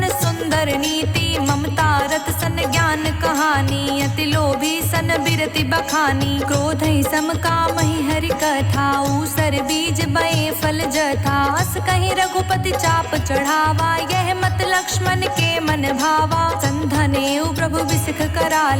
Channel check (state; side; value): identical; both; correlation 1.00